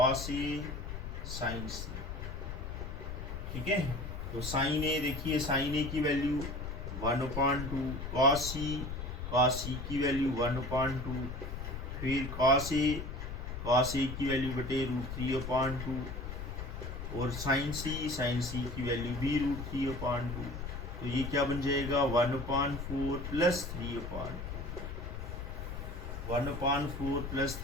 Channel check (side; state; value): left; noise; rumble, 6 dB below the sound